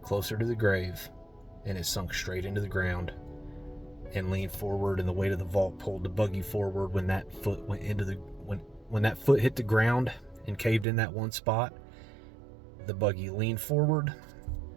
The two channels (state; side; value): drops out; left; at 10.9 s